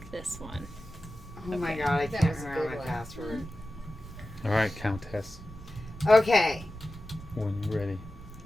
this one. Oh my Okay. god, I That can't was a remember good my one. password. All right, Countess. Okay. When you're ready.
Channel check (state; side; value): noise; right; rumble, 15 dB below the sound